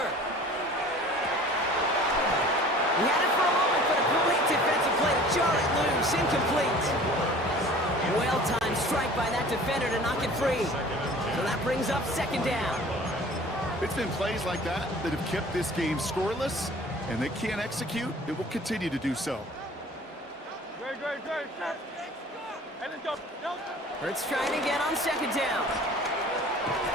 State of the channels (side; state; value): both; normal; correlation 0.46